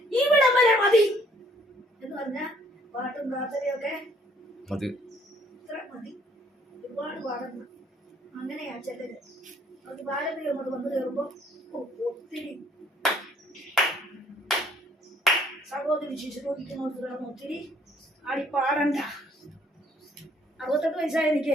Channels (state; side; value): normal; both; correlation 0.62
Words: ഇവിടം വരെ മതി എന്ന് പറഞ്ഞ പാട്ടും പ്രാർത്ഥനയൊക്കെ ഇത്ര മതി. ഒരുപാട് പാടുന്ന അങ്ങനെയാ ചിലര്. അത് പാരമ്പര്യം അങ്ങോട്ട് വന്നു കയറുമ്പോ ഒത്തിരി സഹോദരി ശിശുരോഗിക്കുന്നോട് കിടന്ന് ഒത്തിരി ആടി പാടണ്ട. 68 വയസ്സായ